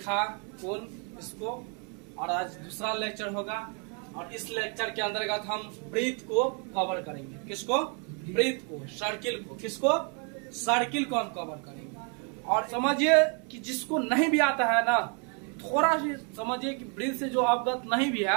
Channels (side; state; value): left; quieter; 37.7 dB